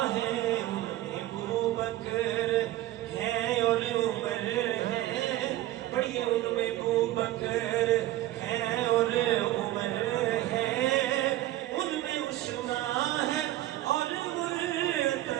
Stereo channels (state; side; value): quieter; left; 15.2 dB